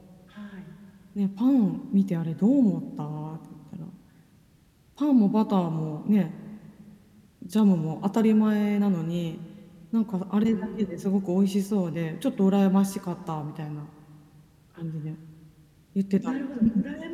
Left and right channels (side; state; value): both; identical; correlation 1.00